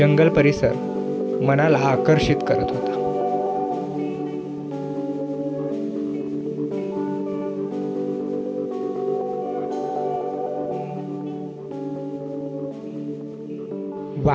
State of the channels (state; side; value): identical; both; correlation 1.00